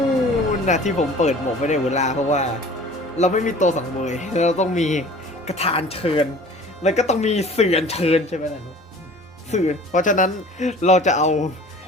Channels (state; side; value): normal; both; correlation 0.45